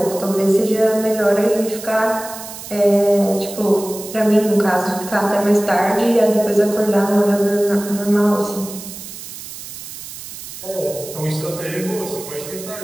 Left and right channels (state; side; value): noise; right; hiss, 12 dB below the sound